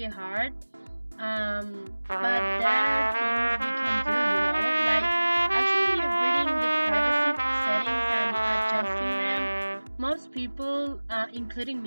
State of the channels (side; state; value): both; inverted; correlation -1.00